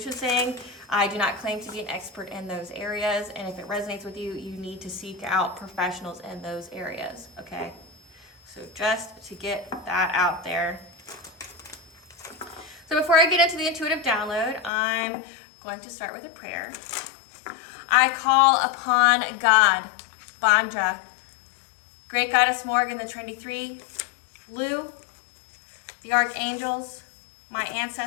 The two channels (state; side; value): drops out; right; at 14.7 s